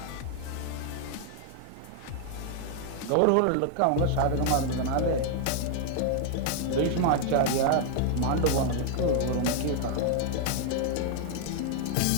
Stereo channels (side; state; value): both; different; correlation 0.00